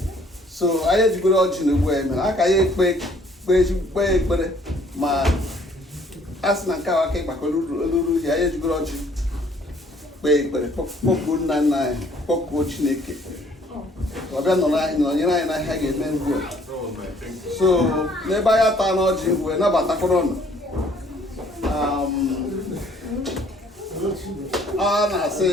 So anyị ejigoro ọjị na ugbu anyị mere aka ya kpee ekpere, ma a sị na nke ahụ aka ịgbakọ oluru ihe anyị ejigoro ọjị kpee ekpere, kpọkuo nna nna anyị, kpọkuo Chineke ọbịa nọnyere anyị na ihe ga-eme ngwu. So n'ebe anyị ata n'ọjị wee nabatakwara ọnụ, ọ na-asị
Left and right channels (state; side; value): normal; both; correlation 0.60